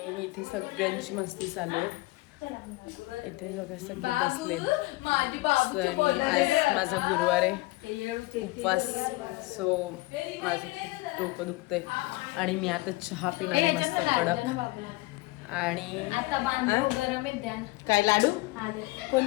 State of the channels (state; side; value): quieter; right; 21.8 dB